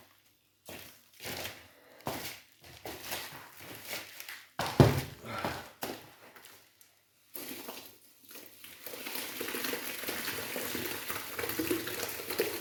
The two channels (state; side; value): identical; both; correlation 1.00